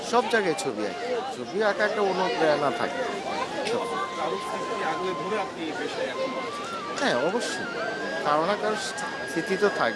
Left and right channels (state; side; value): identical; both; correlation 1.00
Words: সব জায়গায় ছবি আঁকি। ছবি আঁকা একটা অনুপ্রেরণা থাকে সব। হ্যাঁ, অবশ্যই কারো না কারো স্মৃতি তো